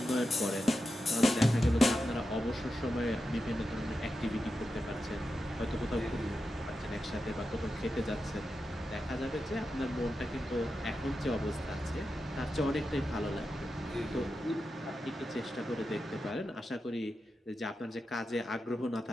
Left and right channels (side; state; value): both; normal; correlation 0.89